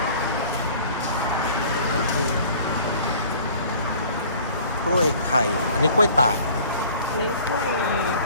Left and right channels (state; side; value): inverted; both; correlation -0.49